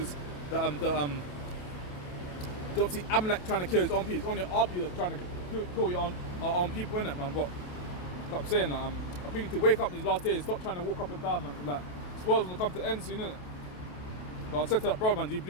you don't see Amalek trying to kill his own people. It's only our people that are trying to kill our own people, innit, man? But I'm saying that I think you need to wake up these last days. Stop trying to walk up and down, man. Like this world's gonna come to an end soon, innit? So I said to that brother, man, do you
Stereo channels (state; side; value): late; right; 28 ms